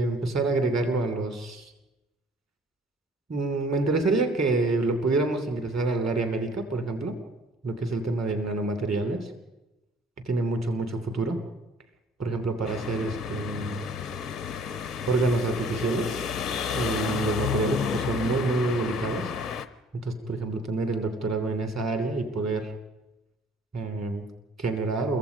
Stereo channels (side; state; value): both; normal; correlation 0.54